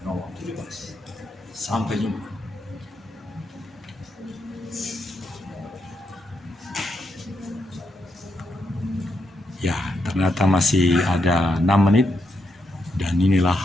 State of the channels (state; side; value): normal; both; correlation 0.81